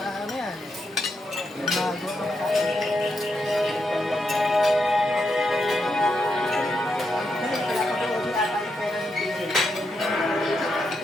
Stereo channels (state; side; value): normal; both; correlation 0.83